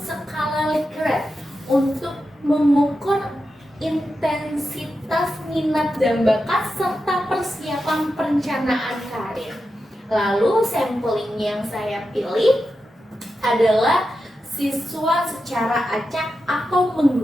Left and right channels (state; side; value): normal; both; correlation 0.89